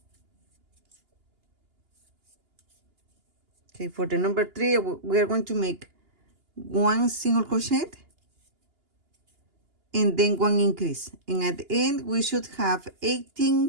Okay, for the number 3, we are going to make one single crochet and then one increase, and at the end we should have 18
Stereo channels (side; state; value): left; late; 2.9 ms